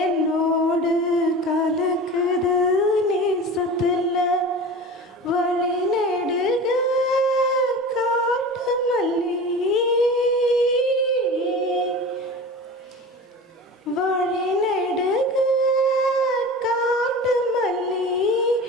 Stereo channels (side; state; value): both; normal; correlation 0.34